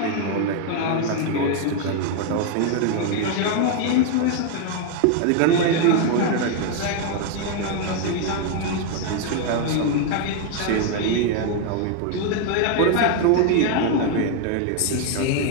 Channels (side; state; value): both; different; correlation 0.01